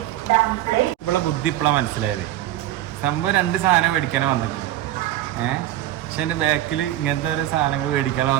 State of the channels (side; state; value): left; quieter; 13.8 dB